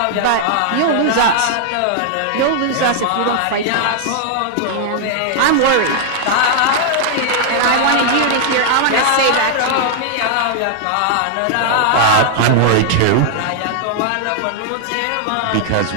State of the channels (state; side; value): different; both; correlation 0.00